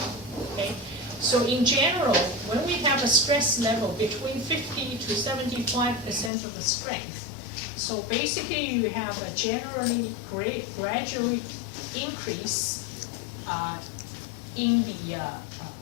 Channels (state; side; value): drops out; right; at 6.3 s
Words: Okay? So in general, when we have a stress level between 50 to 75% of the strength, so basically you have a generally gradual increase in the